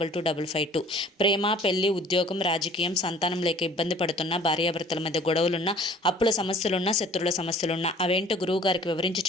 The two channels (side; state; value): both; normal; correlation 0.51